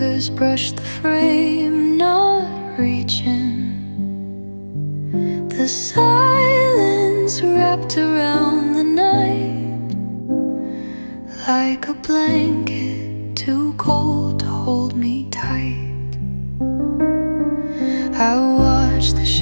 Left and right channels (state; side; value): inverted; both; correlation -1.00